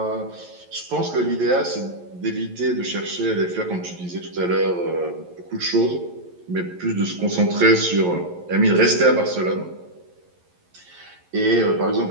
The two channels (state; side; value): late; left; 11 ms